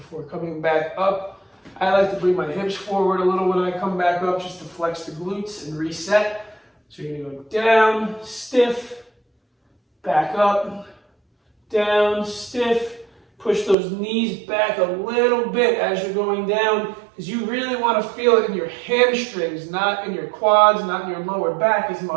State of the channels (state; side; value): drops out; left; at 13.8 s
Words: coming back up. I like to bring my hips forward a little when I come back up just to flex the glutes and reset. So you're going to go down, stiff, back up, down, stiff. Push those knees back a little bit as you're going down, because you really want to feel it in your hamstrings, not in your quads, not in your lower back as